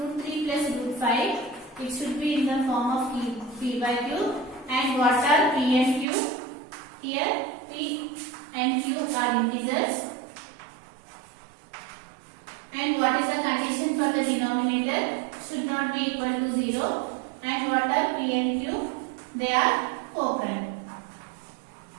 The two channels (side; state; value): left; drops out; at 6.1 s